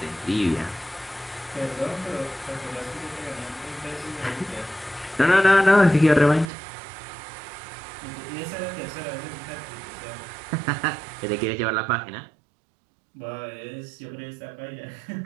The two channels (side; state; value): left; drops out; at 6.5 s